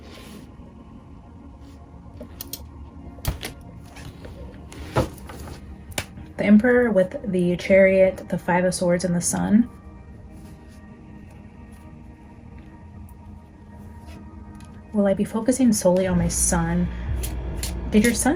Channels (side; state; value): both; identical; correlation 1.00